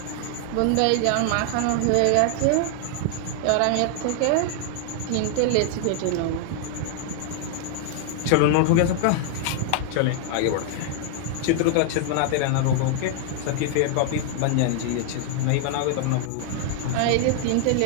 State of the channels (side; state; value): both; different; correlation 0.00